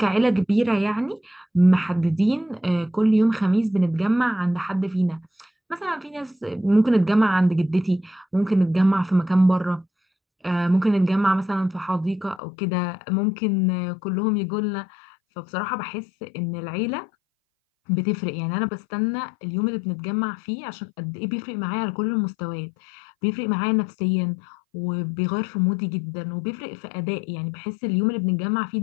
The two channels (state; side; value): drops out; right; at 12.4 s